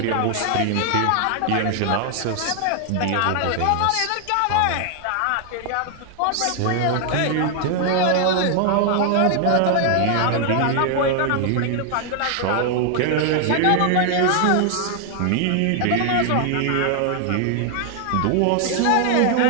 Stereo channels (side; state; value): both; different; correlation 0.00